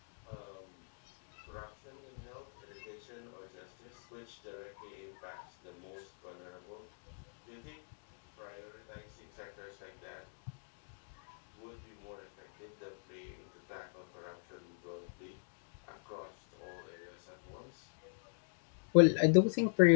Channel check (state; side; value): silent; right; digital silence